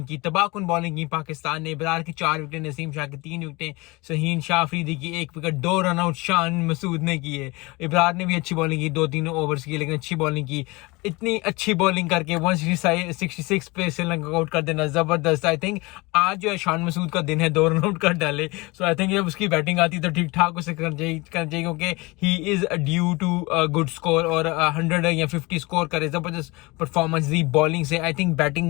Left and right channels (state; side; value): quieter; right; 24.2 dB